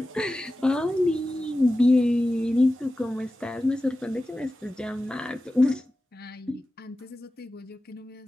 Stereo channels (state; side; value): normal; both; correlation 0.94